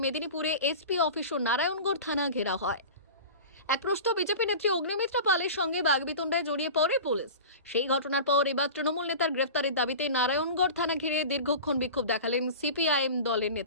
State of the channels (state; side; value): inverted; both; correlation -0.34